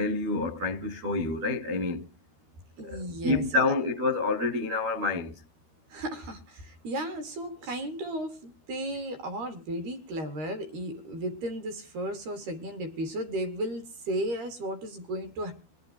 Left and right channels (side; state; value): left; late; 13 ms